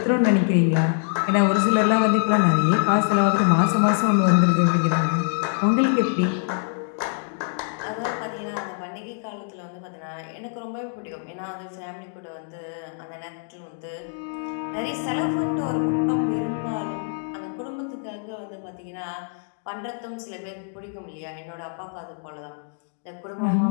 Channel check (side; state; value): right; silent; 62 dB below the other